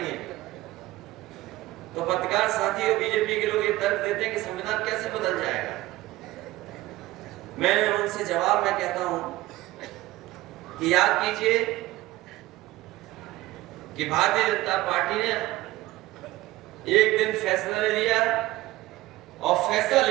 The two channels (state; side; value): quieter; left; 17.6 dB